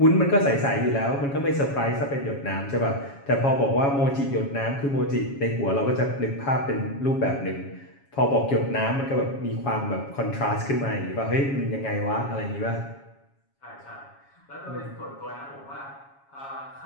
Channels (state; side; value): late; right; 7.2 ms